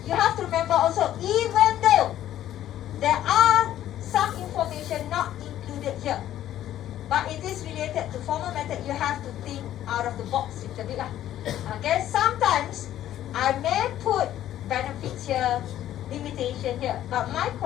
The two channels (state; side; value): quieter; right; 12.3 dB